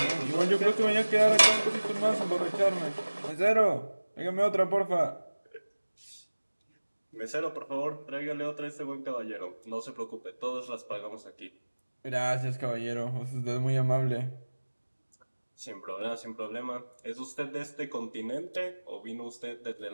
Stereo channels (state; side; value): inverted; both; correlation -1.00